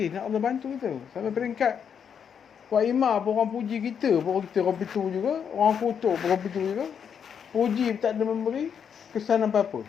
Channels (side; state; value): right; quieter; 7.5 dB